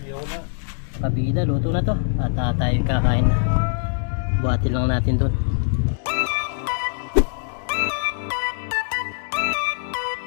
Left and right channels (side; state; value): right; silent; digital silence